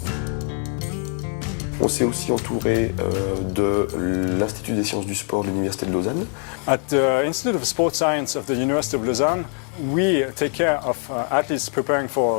On s'est aussi entouré de l'Institut des sciences du sport de l'Université de Lausanne. At the Institute of Sport Science of the University of Lausanne, we take care of athletes preparing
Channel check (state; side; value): quieter; right; 38.8 dB